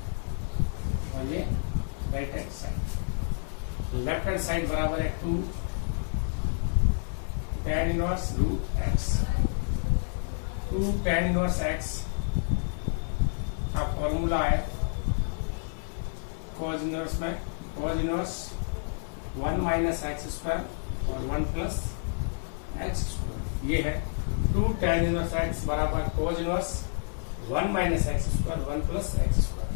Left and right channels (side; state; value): right; silent; digital silence